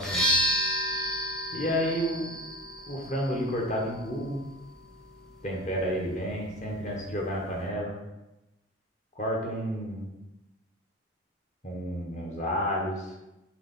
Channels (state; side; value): normal; both; correlation 0.31